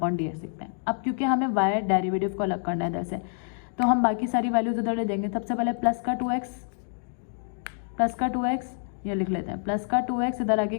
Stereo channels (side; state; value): right; silent; digital silence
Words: लिखते हैं। अब क्योंकि हमें y डेरिवेटिव को अलग करना है इधर से, तो हम बाकी सारी वैल्यूज उधर ले देंगे। सबसे पहले प्लस का 2x ये लिख लेते हैं, प्लस का 2x, इधर आगे